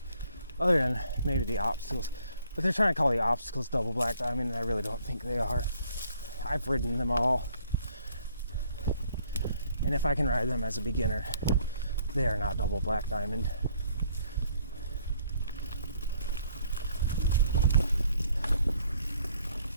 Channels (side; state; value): both; inverted; correlation -0.64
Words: Other than maybe the obstacles. But they're trying to call the obstacles double Black Diamond, and I really don't think they are. I've ridden them all. And if I can ride them as a beginner, they are not double Black Diamond.